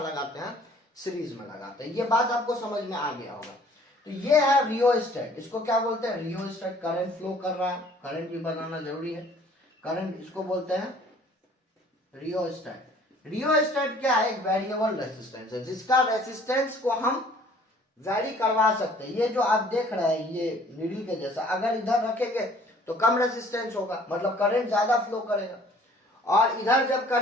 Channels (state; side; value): normal; both; correlation 0.55